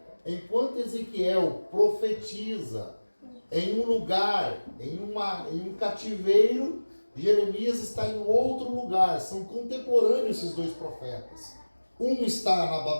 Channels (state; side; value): inverted; both; correlation -1.00